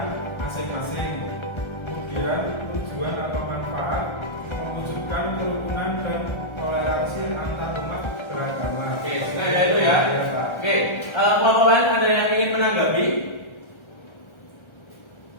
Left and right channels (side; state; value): right; late; 1.3 ms